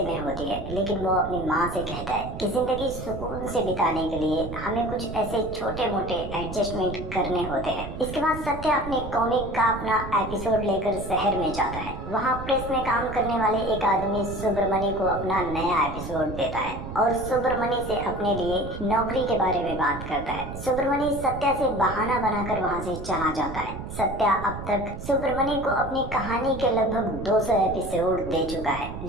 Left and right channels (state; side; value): noise; right; rumble, 9 dB below the sound